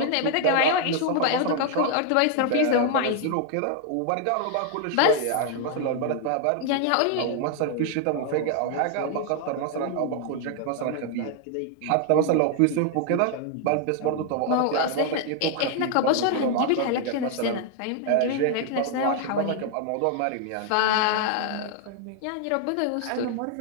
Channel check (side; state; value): both; different; correlation 0.00